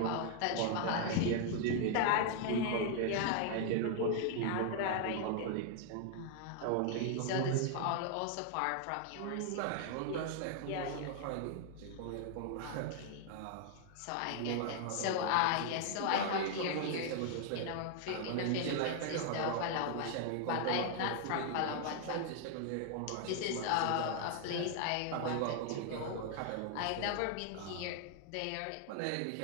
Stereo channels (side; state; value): both; different; correlation 0.00